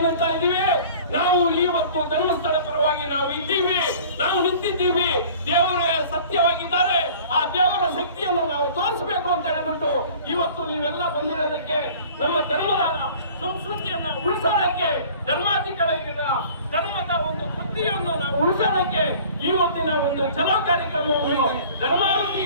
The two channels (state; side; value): inverted; both; correlation -0.47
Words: ಇದೀವಿ, ನಾವು ಇವತ್ತು ಧರ್ಮಸ್ಥಳ ಪರವಾಗಿ ನಾವು ಇದ್ದೀವಿ, ನಾವು ನಿಂತಿದ್ದೀವಿ. ದೇವರೇ ಸತ್ಯವಾಗಿದ್ದಾರೆ, ಆ ದೇವರ ಶಕ್ತಿಯನ್ನು ನಾವು ತೋರಿಸಬೇಕು ಅಂತ ಹೇಳಿಬಿಟ್ಟು ಇವತ್ತು ನೀವೆಲ್ಲ ಬಂದಿರೋದಕ್ಕೆ, ನಮ್ಮ ಧರ್ಮದ ಸಂಸ್ಕೃತಿಯನ್ನ ಉಳಿಸೋದಕ್ಕೆ, ಧರ್ಮದ ಒಂದು ಕೃತಿಯನ್ನು ನಾವು ಉಳಿಸೋದಕ್ಕೆ ಇವತ್ತಿನ ಒಂದು ಚಲೋ ಕಾರ್ಯಕ್ರಮವನ್ನು